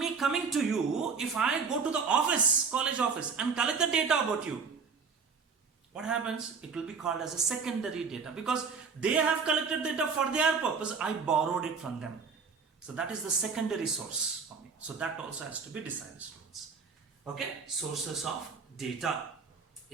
coming to you, if I go to the office, college office, and collect the data about you, what happens? It will be called as a secondary data, because they have collected data for their purpose. I borrowed it from them. So that is the secondary source for me. So that also has to be decided, students. Okay? Sources of data.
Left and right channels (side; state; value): left; quieter; 5.3 dB